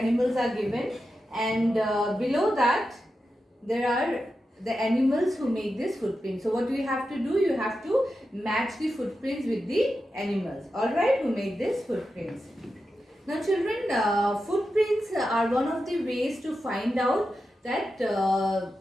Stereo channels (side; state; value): both; normal; correlation 0.90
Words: are given, and below that there are the animals who make this footprint. So what we have to do, you have to match the footprints with the animals, alright, who make this footprints. Now children, footprints are one of the ways to find out that